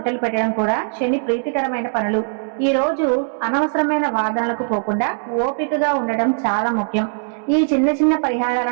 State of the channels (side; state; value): left; silent; digital silence